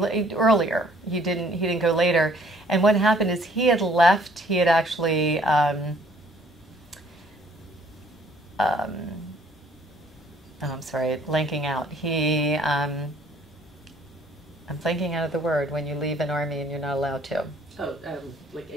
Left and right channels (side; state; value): both; normal; correlation 0.60